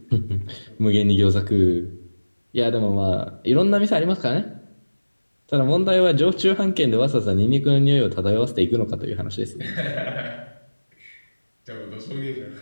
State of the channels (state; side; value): inverted; both; correlation -1.00